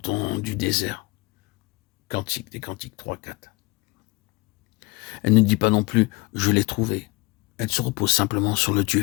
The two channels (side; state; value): right; quieter; 23.6 dB